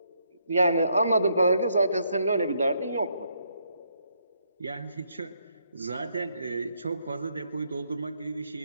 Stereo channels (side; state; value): both; inverted; correlation -0.74